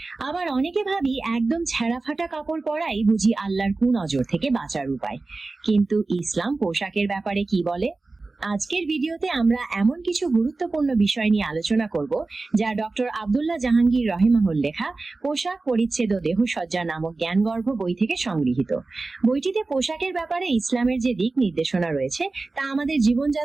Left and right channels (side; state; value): left; quieter; 3.5 dB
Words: আবার অনেকে ভাবি একদম ছেঁড়া ফাটা কাপড় পরাই বুঝি আল্লাহর কুনজর থেকে বাঁচার উপায়। কিন্তু ইসলাম পোশাকের ব্যাপারে কি বলে? আজকের ভিডিওতে আমরা এমন কিছু গুরুত্বপূর্ণ বিষয় নিয়ে আলোচনা করব যা ডক্টর আব্দুল্লাহ জাহাঙ্গীর রহিমাহুল লেখা পোশাক পরিচ্ছেদ ও দেহসজ্জা নামক জ্ঞানগর্ভ বই থেকে সংগৃহীত। বইটিতে পোশাকের ব্যাপারে ইসলামের যে দিক নির্দেশনা রয়েছে তা আমাদের